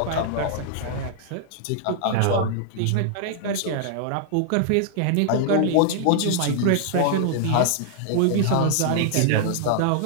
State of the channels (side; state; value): both; different; correlation -0.01